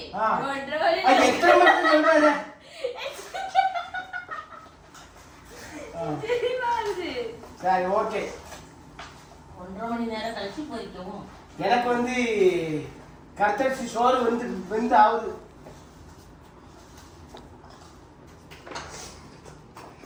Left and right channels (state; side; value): identical; both; correlation 1.00